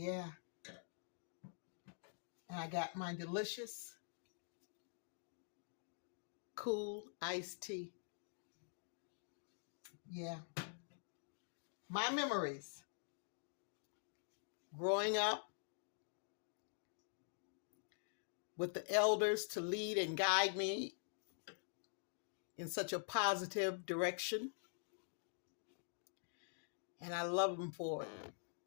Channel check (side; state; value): right; silent; digital silence